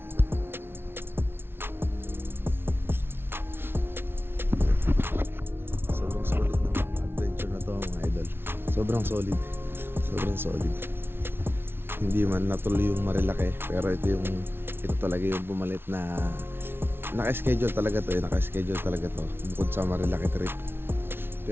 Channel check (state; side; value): late; left; 0.11 ms